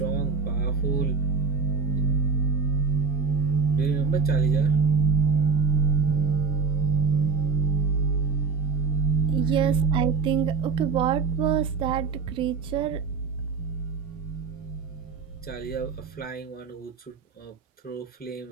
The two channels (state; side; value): quieter; left; 5.1 dB